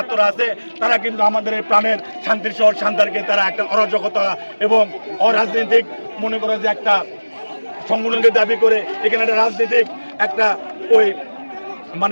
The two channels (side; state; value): both; inverted; correlation -1.00